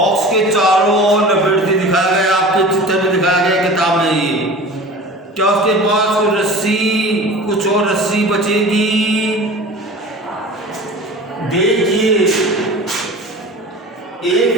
के चारों ओर लपेटती दिखाया गया, आपके चित्र में दिखाया गया किताब में। ये क्या उसके पास कुछ और रस्सी बचेगी? देखिए, एक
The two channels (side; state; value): both; normal; correlation 0.38